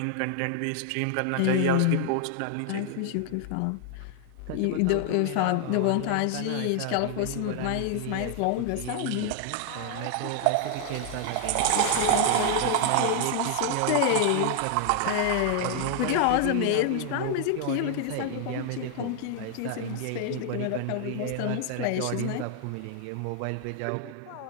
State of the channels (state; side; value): different; both; correlation 0.00